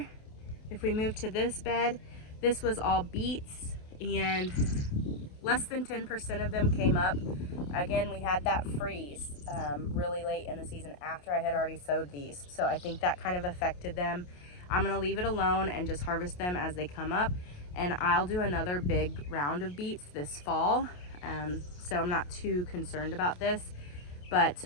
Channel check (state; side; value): late; right; 28 ms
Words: If we move to this bed, this was all beets, and less than 10% of them came up. Again, we had that freeze really late in the season after I had already sowed these. So I think that kind of affected them. I'm gonna leave it alone and just harvest them as they come up. And I'll do another big round of beets this fall. So I'm not too concerned about this, but